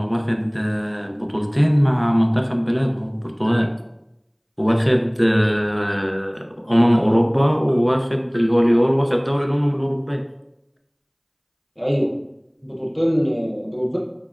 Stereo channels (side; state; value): both; identical; correlation 1.00